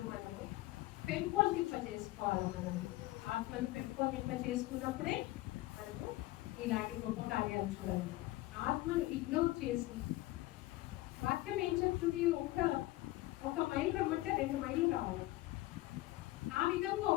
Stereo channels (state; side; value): quieter; right; 18.3 dB